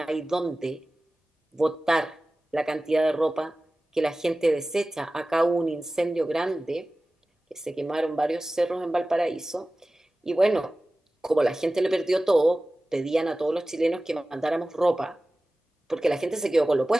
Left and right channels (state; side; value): normal; both; correlation 0.97